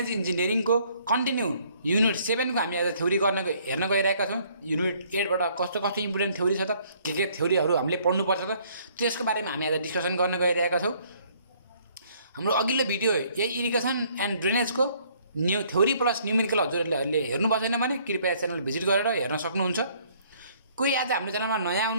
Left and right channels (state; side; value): inverted; both; correlation -0.62